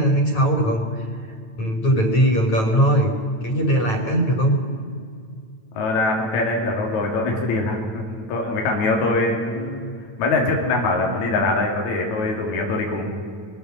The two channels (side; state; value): right; late; 9.2 ms